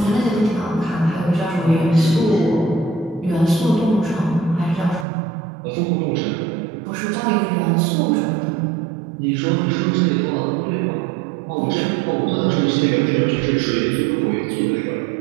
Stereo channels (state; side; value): drops out; left; at 5.1 s